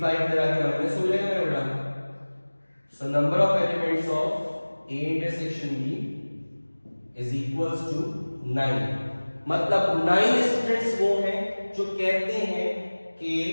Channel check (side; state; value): both; inverted; correlation -1.00